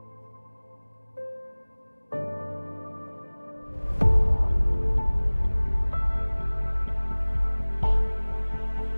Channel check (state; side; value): inverted; both; correlation -1.00